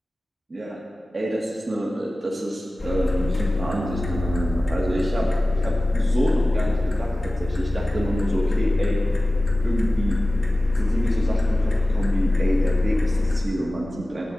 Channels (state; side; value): normal; both; correlation 0.96